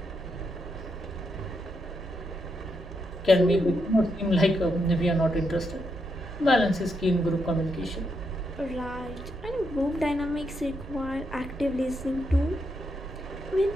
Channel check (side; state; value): both; normal; correlation 0.81